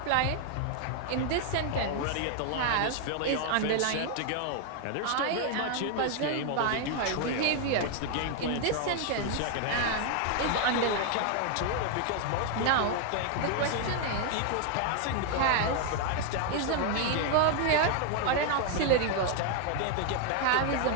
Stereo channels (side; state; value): both; different; correlation 0.00